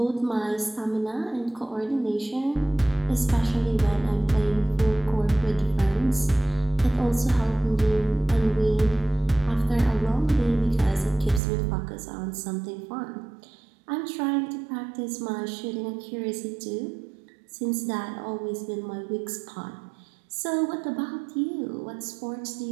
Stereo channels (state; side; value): drops out; left; at 11.4 s